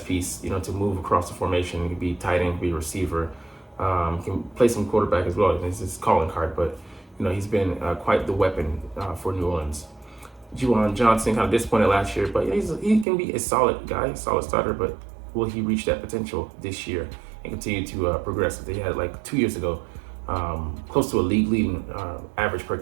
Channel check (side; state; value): left; drops out; at 13.1 s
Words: piece, to move across the formation. He can be tight end, be receiver. Can play some quarterback as well. It's his calling card, but, he's been quite the weapon for New Orleans. Juwan Johnson, kind of disappointed last year, but he can be a solid guy, solid starter, but will he reach that potential this year and continue to progress? They had 2 years ago, close to a league leading average per